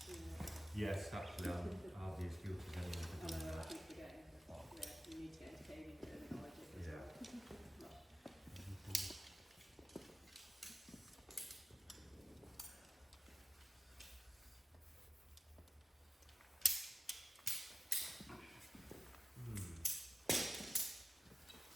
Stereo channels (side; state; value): both; normal; correlation 0.94